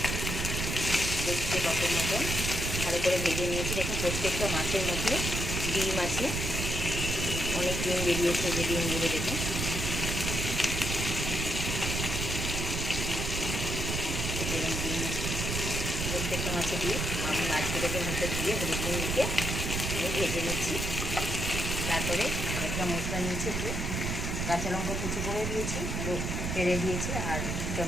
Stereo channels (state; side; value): noise; right; rumble, 1 dB below the sound